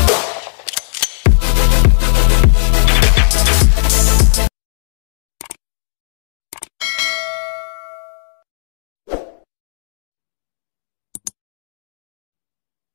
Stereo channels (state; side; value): silent; right; 57 dB below the other